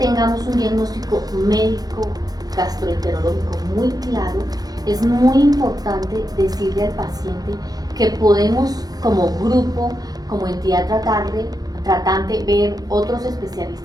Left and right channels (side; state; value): left; late; 0.19 ms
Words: un diagnóstico médico gastroenterológico muy claro, es muy importante decirle al paciente que podemos como grupo, como entidad tratante, ver otros